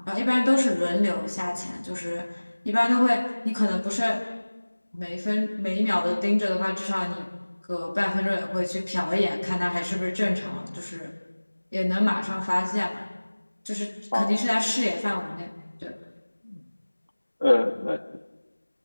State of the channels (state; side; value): inverted; both; correlation -1.00